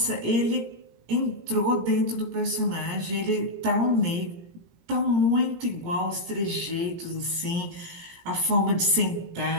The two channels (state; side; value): late; left; 18 ms